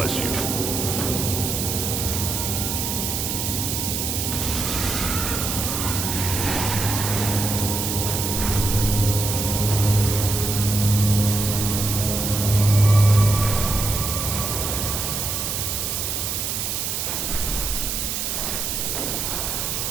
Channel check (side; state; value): right; noise; hiss, 2 dB below the sound